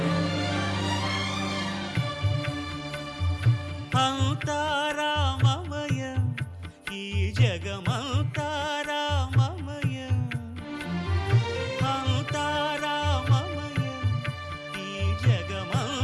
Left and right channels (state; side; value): identical; both; correlation 1.00